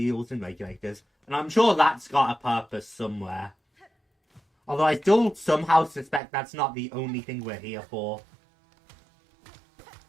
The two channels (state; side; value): drops out; left; at 6.2 s